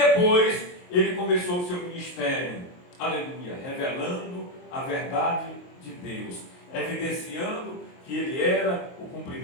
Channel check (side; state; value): right; late; 23 ms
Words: ele começou o seu ministério, aleluia, revelando a verdade de Deus, evidenciando que ele era o